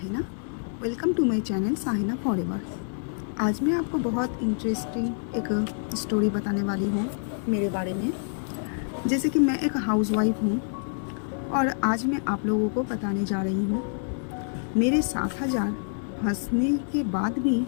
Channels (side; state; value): right; silent; digital silence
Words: Welcome to my channel Sahina forever. आज मैं आपको बहुत इंटरेस्टिंग एक स्टोरी बताने वाली हूँ मेरे बारे में। जैसे कि मैं एक हाउसवाइफ हूँ और आज मैं आप लोगों को बताने जा रही हूँ मेरे 7,000 हंसने के बाद भी